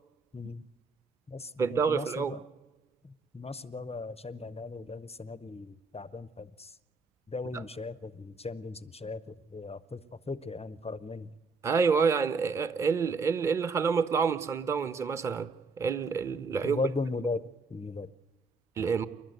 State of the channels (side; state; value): left; quieter; 3.9 dB